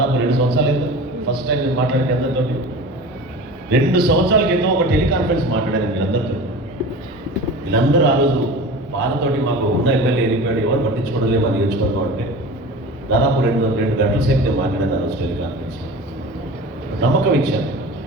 2 సంవత్సరాలు అయింది. ఫస్ట్ టైం నేను మాట్లాడిన అందరితో 2 సంవత్సరాల క్రితం ఒక టెలికాన్ఫరెన్స్ మాట్లాడాను వీళ్ళందరితో. వీళ్ళందరూ ఆ రోజు బాధతోటి మాకు ఉన్న ఎమ్మెల్యే వెళ్ళిపోయాడు, ఎవరు పట్టించుకోవడం లేదు మన నియోజకవర్గం అంటే. దాదాపు 2 గంటల సేపు నేను మాట్లాడాను ఆ రోజు టెలికాన్ఫరెన్స్. నమ్మకం ఇచ్చాను.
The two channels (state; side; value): normal; both; correlation 0.35